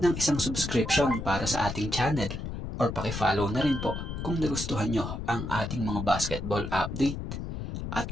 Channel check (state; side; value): noise; left; rumble, 6 dB below the sound